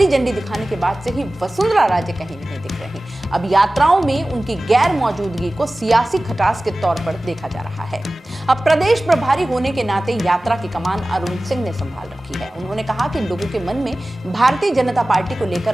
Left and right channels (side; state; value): both; normal; correlation 0.97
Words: झंडी दिखाने के बाद से ही वसुंधरा राजे कहीं नहीं दिख रही। अब यात्राओं में उनकी गैर मौजूदगी को सियासी खटास के तौर पर देखा जा रहा है। अब प्रदेश प्रभारी होने के नाते यात्रा की कमान अरुण सिंह ने संभाल रखी है। उन्होंने कहा कि लोगों के मन में भारतीय जनता पार्टी को